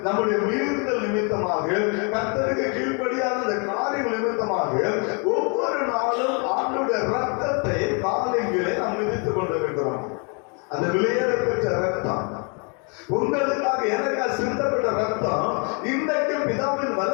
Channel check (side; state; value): right; quieter; 35.9 dB